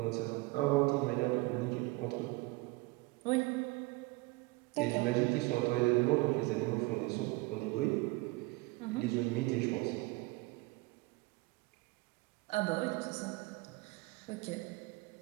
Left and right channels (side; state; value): left; quieter; 23.4 dB